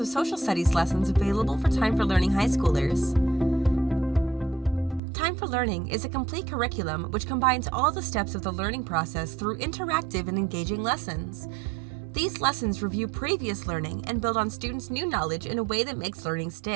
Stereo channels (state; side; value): drops out; left; at 5.0 s